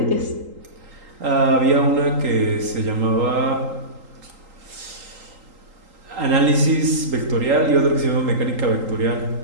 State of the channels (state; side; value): late; left; 3.8 ms